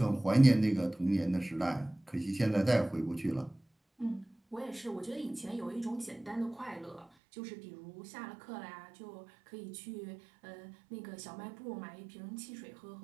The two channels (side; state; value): left; drops out; at 7.1 s